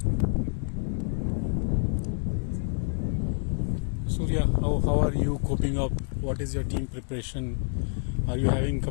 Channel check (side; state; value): right; silent; 60 dB below the other